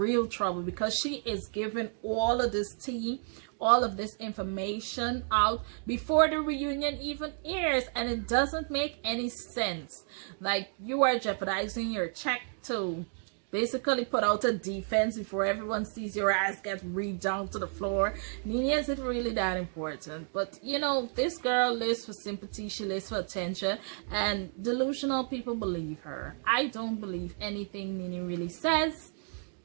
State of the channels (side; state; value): left; silent; 57 dB below the other